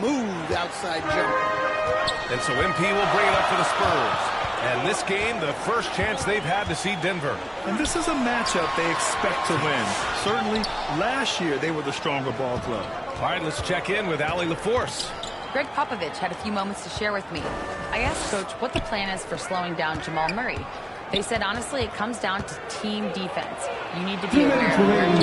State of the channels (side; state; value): both; identical; correlation 1.00